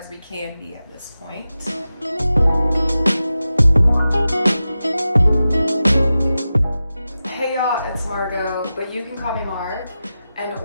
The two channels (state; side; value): inverted; both; correlation -0.93